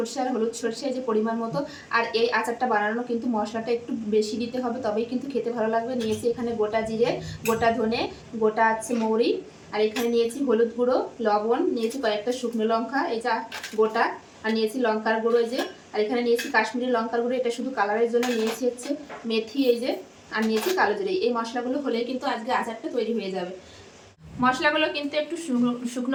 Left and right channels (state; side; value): identical; both; correlation 1.00